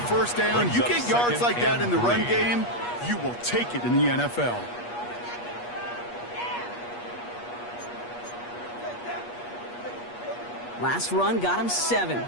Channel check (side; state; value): right; late; 8.4 ms